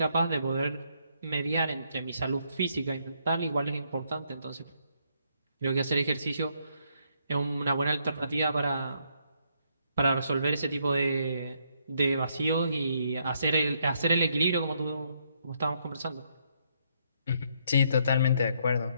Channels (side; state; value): both; inverted; correlation -0.73